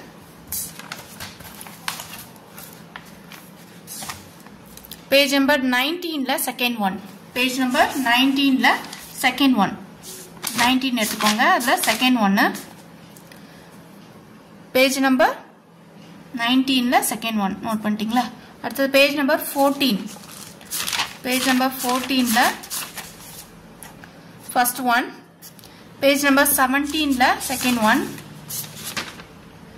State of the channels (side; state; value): both; identical; correlation 1.00